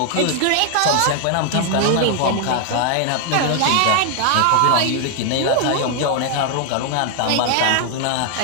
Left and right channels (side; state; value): both; different; correlation 0.00